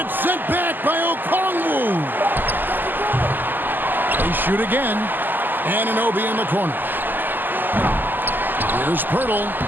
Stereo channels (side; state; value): left; late; 0.089 ms